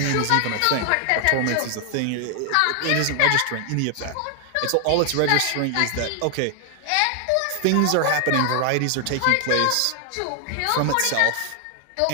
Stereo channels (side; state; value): both; different; correlation 0.00